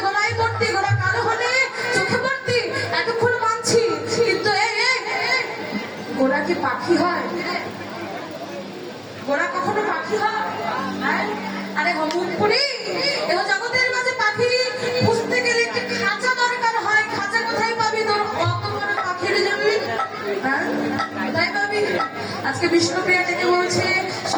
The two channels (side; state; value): both; identical; correlation 1.00